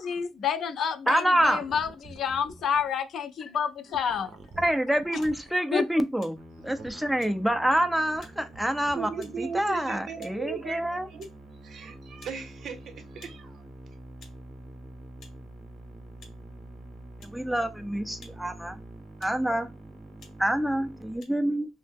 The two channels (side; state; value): both; normal; correlation 0.88